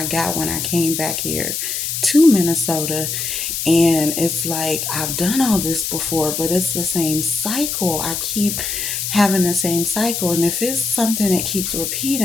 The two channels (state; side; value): noise; left; hiss, 3 dB below the sound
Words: got when I came back here to Minnesota. And it's like, I've done all this before, but it's the same cycle. I keep having the same cycle. And if it's something that keeps